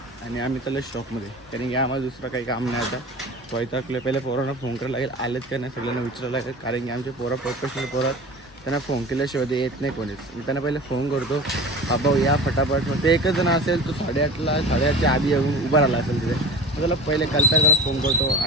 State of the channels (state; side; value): normal; both; correlation 0.36